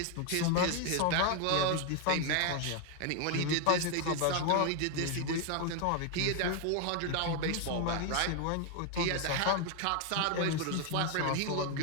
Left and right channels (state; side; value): different; both; correlation 0.01